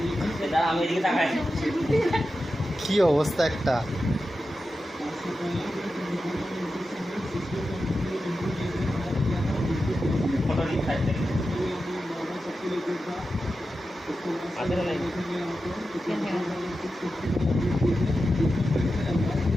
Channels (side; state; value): both; normal; correlation 0.91